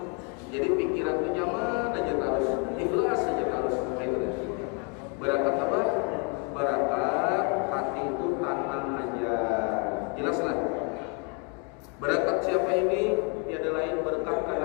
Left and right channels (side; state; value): right; quieter; 36.0 dB